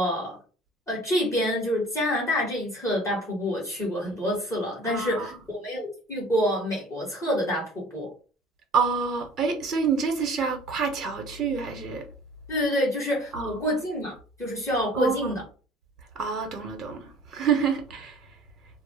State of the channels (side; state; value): both; normal; correlation 0.48